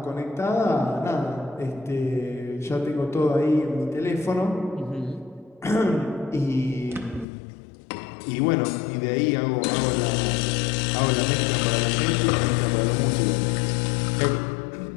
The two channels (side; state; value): right; drops out; at 7.2 s